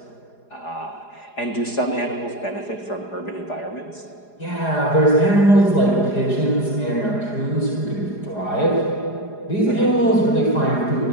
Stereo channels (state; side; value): late; right; 4.9 ms